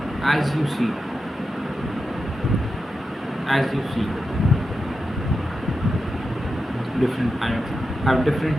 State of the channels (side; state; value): both; normal; correlation 0.89